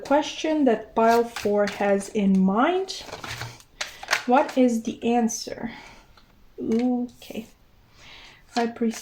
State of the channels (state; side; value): identical; both; correlation 1.00